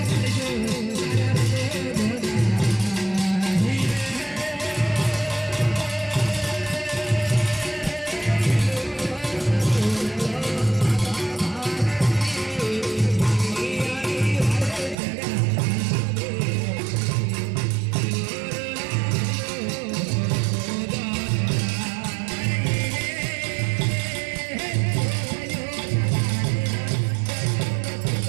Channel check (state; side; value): drops out; left; at 15.0 s